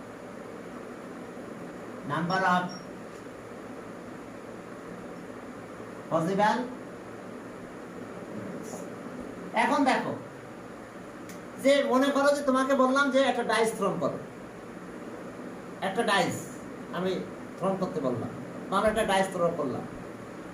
number of possible। এখন দেখো যে মনে করো যে তোমাকে বললাম যে একটা ডাইস থ্রোন করো, একটা ডাইস আমি থ্রোন করতে বললাম, আমরা একটা ডাইস থ্রো করলাম।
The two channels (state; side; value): identical; both; correlation 1.00